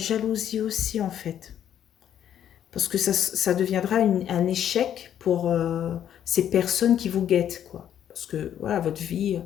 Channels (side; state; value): right; quieter; 10.1 dB